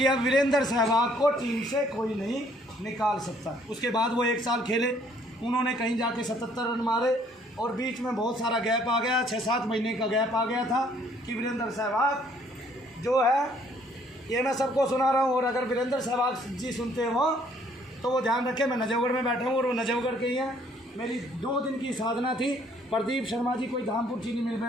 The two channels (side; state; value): both; normal; correlation 0.63